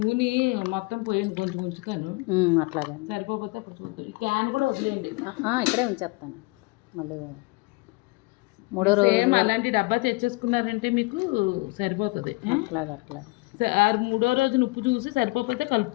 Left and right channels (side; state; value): right; quieter; 25.5 dB